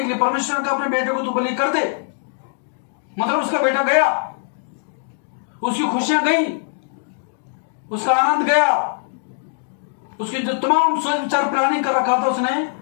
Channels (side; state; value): right; silent; digital silence